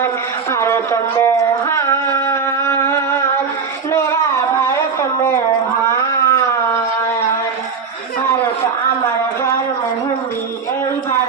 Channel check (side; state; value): left; quieter; 5.7 dB